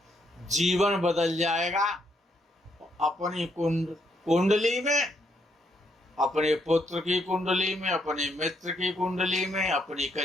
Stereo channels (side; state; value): both; normal; correlation 0.75